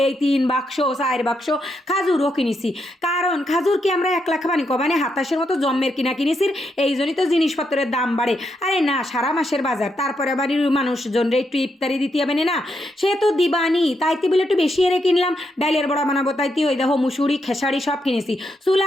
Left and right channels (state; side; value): normal; both; correlation 0.80